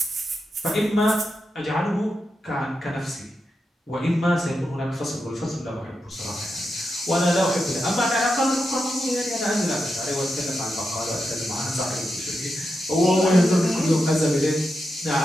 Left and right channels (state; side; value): normal; both; correlation 0.87